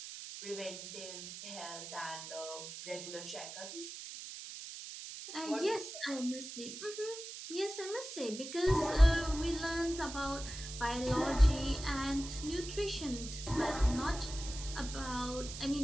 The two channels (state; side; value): noise; right; hiss, 10 dB below the sound